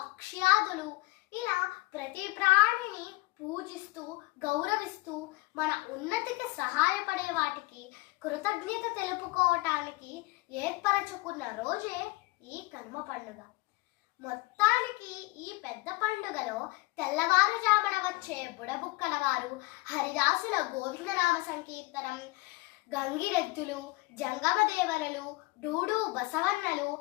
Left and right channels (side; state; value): right; quieter; 22.4 dB